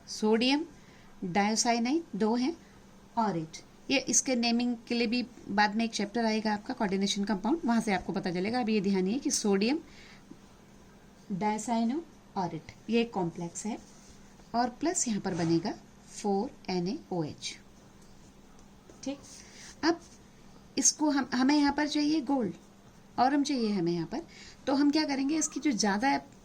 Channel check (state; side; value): identical; both; correlation 1.00